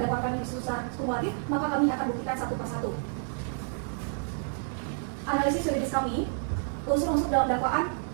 dakwaan kami secara kumulatif, maka kami akan buktikan satu persatu. Analisis yuridis kami, unsur-unsur dalam dakwaan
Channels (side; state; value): left; silent; 58 dB below the other